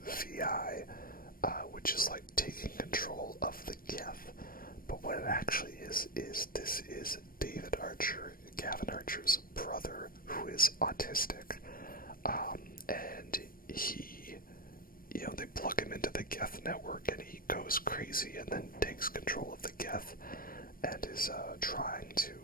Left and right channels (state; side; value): late; right; 0.41 ms